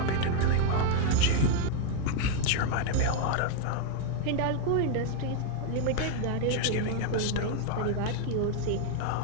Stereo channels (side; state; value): both; different; correlation 0.00